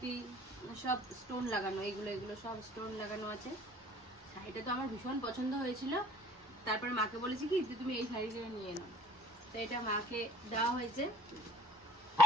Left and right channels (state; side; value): normal; both; correlation 0.49